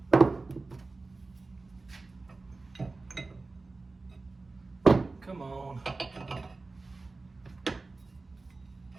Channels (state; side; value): quieter; left; 3.6 dB